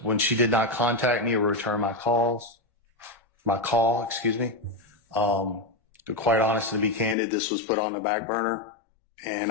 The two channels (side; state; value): right; drops out; at 7.2 s